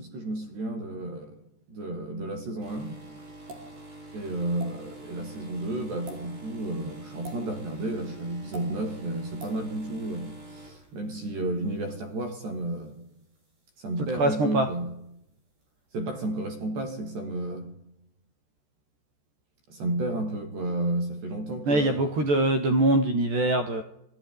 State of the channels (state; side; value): late; left; 14 ms